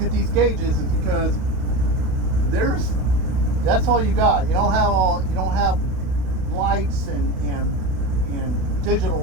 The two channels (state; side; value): late; left; 32 ms